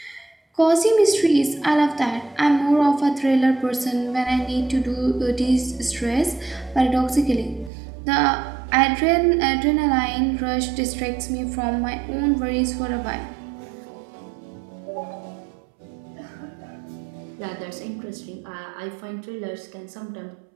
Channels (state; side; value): drops out; left; at 7.7 s